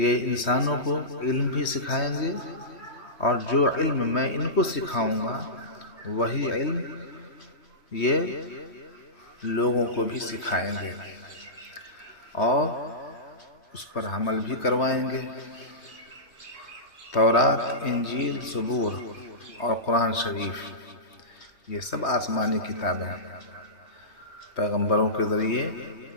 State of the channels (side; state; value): right; late; 3.2 ms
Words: انسانوں کو علم بھی سکھائیں گے، اور جو علم میں ان کو سکھاؤں گا وہی علم یہ لوگوں کو بھی سکھائیں گے اور اس پر عمل بھی کروائیں گے۔ تورات، انجیل، زبور اور قرآن شریف یہ سب آسمانی کتابیں پیغمبروں کے ذریعے